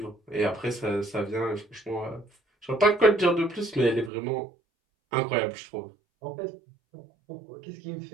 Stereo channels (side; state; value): left; drops out; at 4.1 s